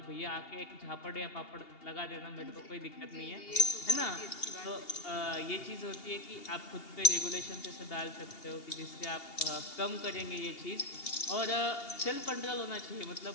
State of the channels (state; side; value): late; right; 2.8 ms